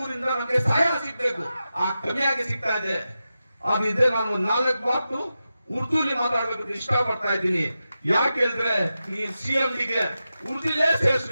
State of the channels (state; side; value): inverted; both; correlation -0.91